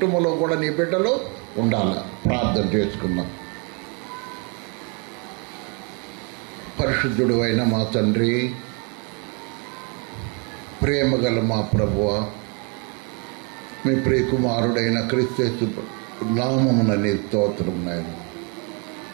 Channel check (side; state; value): left; quieter; 34.0 dB